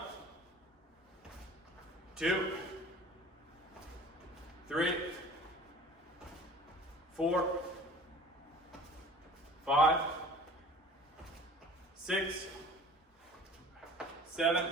2, 3, 4, 5, 6,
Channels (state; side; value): normal; both; correlation 0.44